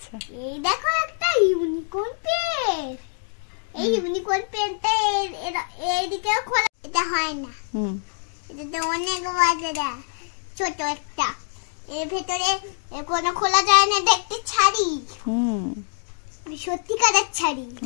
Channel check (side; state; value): right; silent; digital silence